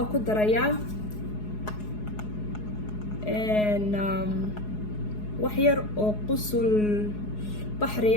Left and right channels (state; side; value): late; right; 4.8 ms